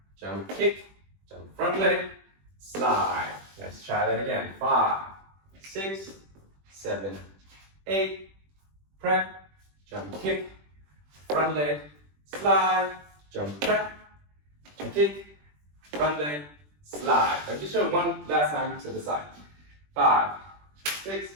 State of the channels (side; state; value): left; late; 20 ms